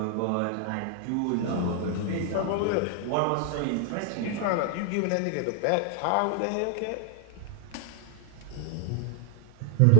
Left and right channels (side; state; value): both; different; correlation 0.00